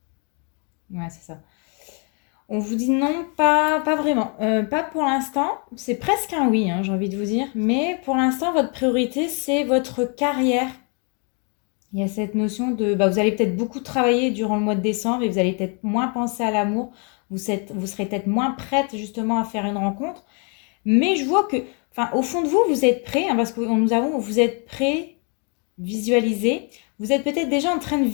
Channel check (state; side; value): quieter; right; 37.3 dB